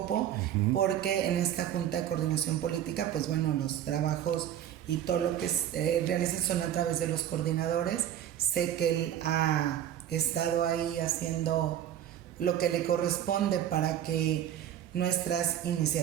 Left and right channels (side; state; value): left; quieter; 10.8 dB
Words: porque en esta Junta de Coordinación Política, pues bueno, los trabajos y todo lo que realizan son a través de los coordinadores. Sé que él ha estado ahí haciendo lo que le corresponde para que nuestras